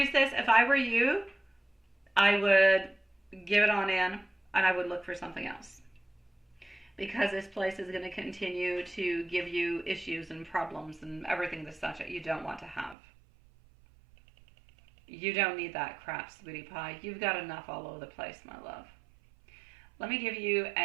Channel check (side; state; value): left; drops out; at 13.0 s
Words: if I were you, I would give it on in, and I would look for something else, because this place is going to continue to give you issues and problems and everything the such that you don't want to have. You don't need that crap, sweetie pie. You've got enough all over the place, my love. Let me give you